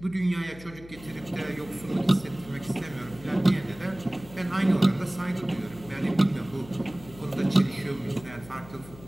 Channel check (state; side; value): noise; left; hum, 18 dB below the sound